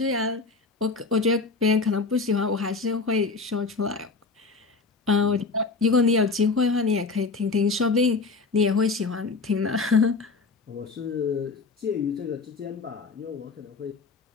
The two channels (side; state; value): right; quieter; 4.1 dB